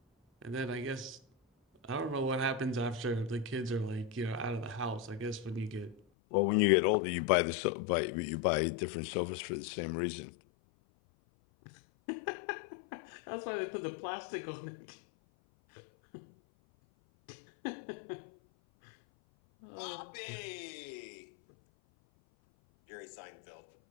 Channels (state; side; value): drops out; right; at 6.0 s